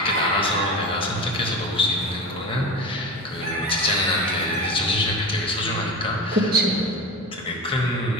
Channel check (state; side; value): normal; both; correlation 0.28